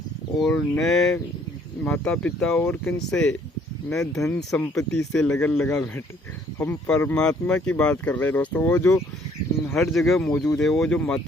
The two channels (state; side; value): normal; both; correlation 0.62